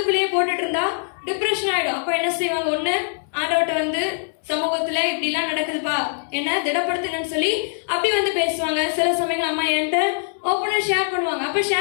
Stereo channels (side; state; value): right; silent; 64 dB below the other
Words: போட்டுட்டு இருந்தா டிப்ரெஷன் ஆயிடும். அப்போ என்ன செய்வாங்க, ஒண்ணு ஆண்டவர்ட்ட வந்து சமூகத்துல இப்படி எல்லாம் நடக்குதுப்பா, என்ன திடப்படுத்துங்கன்னு சொல்லி அப்படி வந்து பேசுவாங்க. சில சமயங்கள் அம்மா என்கிட்ட ஓப்பனா ஷேர் பண்ணுவாங்க. அப்ப